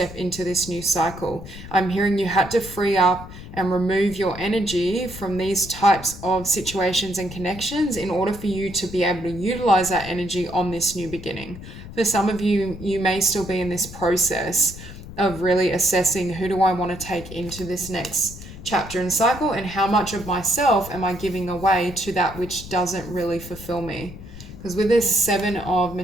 into this new cycle. I'm hearing you had to free up and remove your energy from these types of situations and connections in order for you to be able to utilize that energy on this new beginning. For some of you, you may still be in this process of really assessing, who do I want to take into this next chapter and cycle, and how much of myself am I giving away to that which doesn't really fulfill me? Because with this Seven of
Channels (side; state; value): left; noise; rumble, 14 dB below the sound